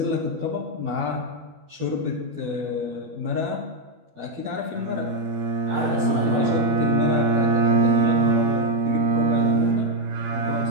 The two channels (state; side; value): late; left; 12 ms